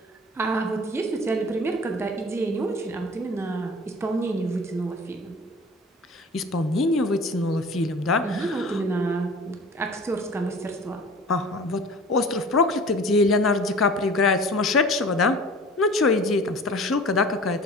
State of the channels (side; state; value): both; normal; correlation 0.43